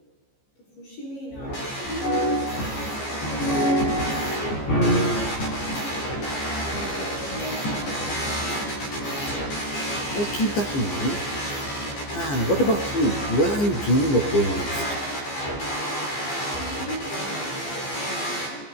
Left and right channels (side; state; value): right; late; 14 ms